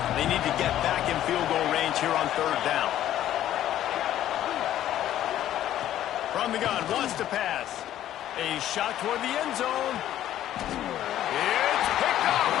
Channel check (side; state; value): right; quieter; 12.3 dB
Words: they need to get back in field goal range here on 3rd down. From the gun, wants to pass. A shot toward the end zone. It's picked off,